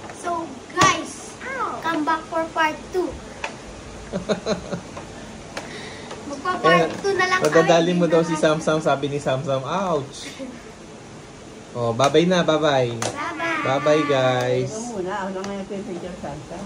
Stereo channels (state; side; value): identical; both; correlation 1.00